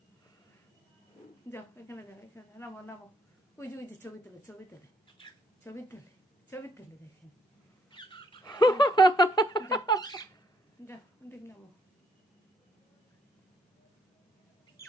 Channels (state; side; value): normal; both; correlation 0.69